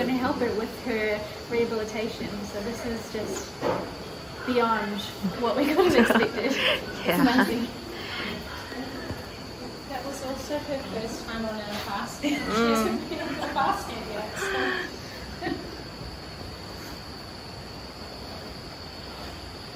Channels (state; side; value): identical; both; correlation 1.00